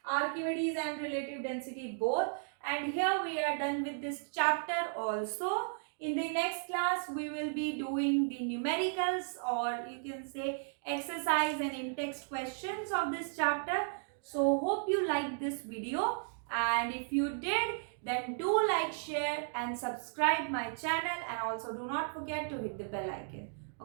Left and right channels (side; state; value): left; silent; digital silence